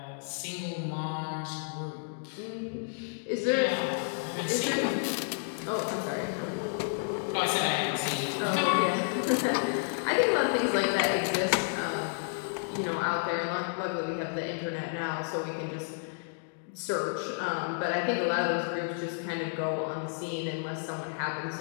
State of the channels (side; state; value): right; silent; digital silence